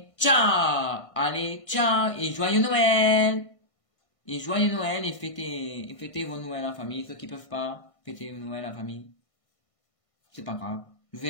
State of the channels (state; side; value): late; right; 1.5 ms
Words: ciao! Allez, ciao! Et joyeux Noël! Et joyeux Noël et fêtez vos Noëls en famille. Ceux qui peuvent pas fêter Noël en famille. C'est pas grave. Je vous